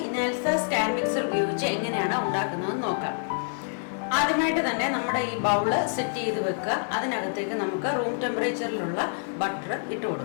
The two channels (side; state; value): right; silent; digital silence